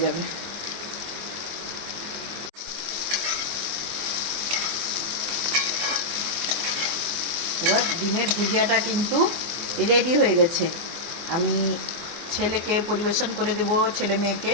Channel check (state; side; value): late; left; 24 ms